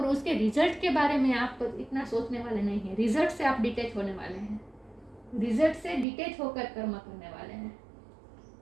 उसके रिजल्ट के बारे में आप इतना सोचने वाले नहीं हैं। रिजल्ट से आप डिटैच होने वाले हैं। रिजल्ट से डिटैच होकर कर्म करने वाले हैं।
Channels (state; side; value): drops out; left; at 6.1 s